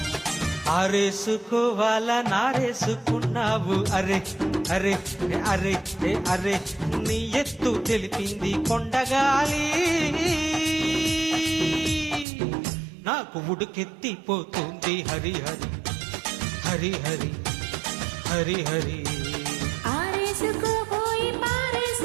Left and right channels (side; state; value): left; drops out; at 12.2 s